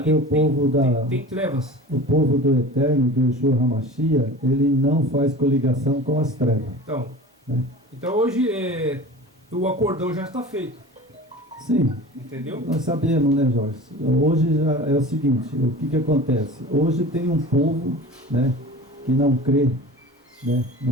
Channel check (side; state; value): both; normal; correlation 0.37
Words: o povo tem trevas. O povo do Eterno, do Yeshua HaMashiach, ele não faz coligação com as trevas. Então, né? Então hoje o acordão já está feito. Sim. Entendeu? Nós sabemos, né, Jorge? Hoje já é o seguinte, o que acontece? Hoje tem um povo, né, que não crê, né,